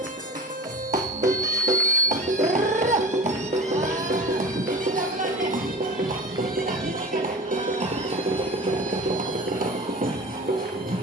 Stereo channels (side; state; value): both; normal; correlation 0.36